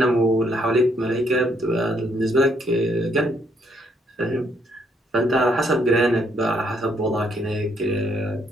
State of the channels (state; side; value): normal; both; correlation 0.71